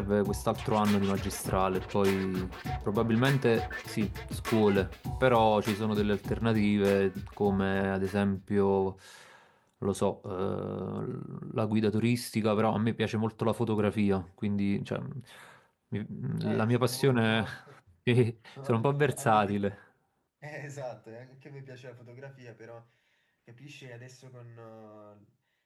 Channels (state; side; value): identical; both; correlation 1.00